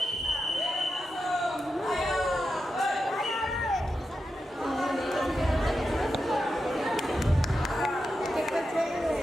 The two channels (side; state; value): both; normal; correlation 0.88